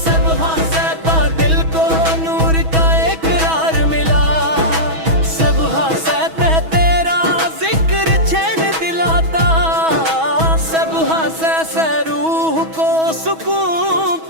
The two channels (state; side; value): late; left; 6.2 ms